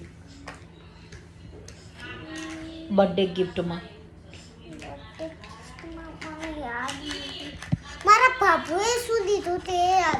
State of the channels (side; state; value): both; identical; correlation 1.00